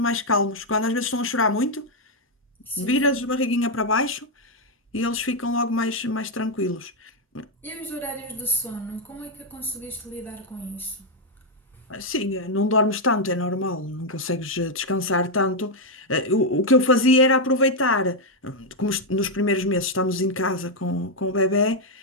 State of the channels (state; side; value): normal; both; correlation 0.01